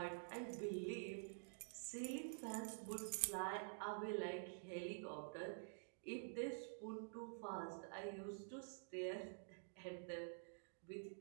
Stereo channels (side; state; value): left; silent; digital silence